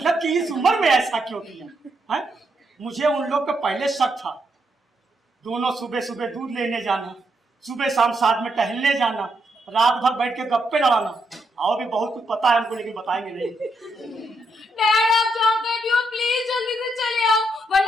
कि इस उम्र में ऐसा क्यों किया है? मुझे उन लोग पे पहले शक था। दोनों सुबह सुबह दूध लेने जाना, सुबह शाम साथ में टहलने जाना, रात भर बैठ के गप्पे लड़ाना। और भी बहुत कुछ पता है हमको, लेकिन बताएंगे नहीं। डैड, आप जहाँ कहीं भी हो प्लीज जल्दी से चले आओ,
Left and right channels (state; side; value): normal; both; correlation 0.79